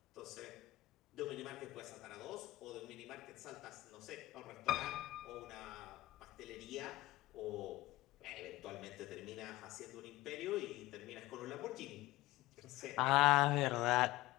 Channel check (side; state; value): right; quieter; 18.1 dB